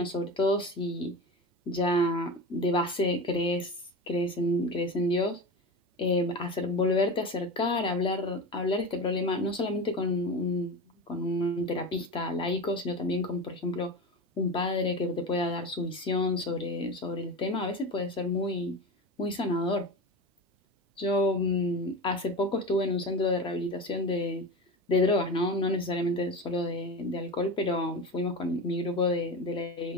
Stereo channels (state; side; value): normal; both; correlation 0.26